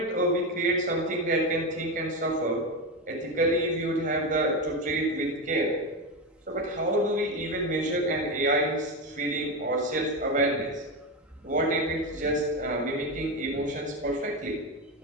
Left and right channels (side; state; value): both; normal; correlation 0.15